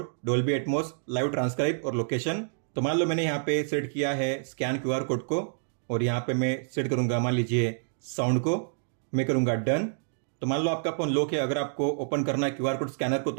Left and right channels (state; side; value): silent; left; digital silence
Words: Dolby Atmos, live transcribe और लोकेशन। तो मान लो मैंने यहाँ पे सेट किया है स्कैन QR कोड को, और यहाँ पे मैं सेट करूंगा मान लीजिए साउंड को, मैं करूंगा डन। तो मान लो आपका फोन लॉक है, अगर आपको ओपन करना है QR कोड स्कैनर को,